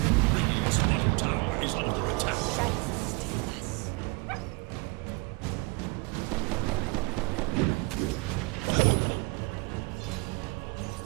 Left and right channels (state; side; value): quieter; left; 27.3 dB